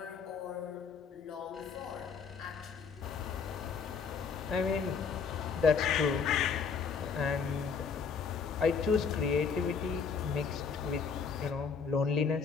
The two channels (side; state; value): right; quieter; 5.9 dB